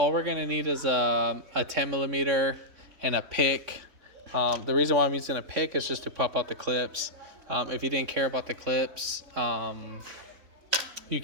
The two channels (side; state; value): left; late; 3.5 ms